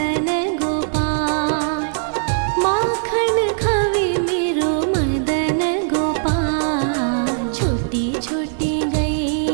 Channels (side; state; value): left; silent; digital silence